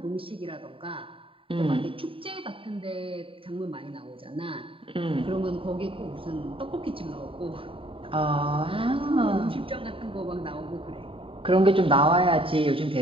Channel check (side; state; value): left; late; 0.26 ms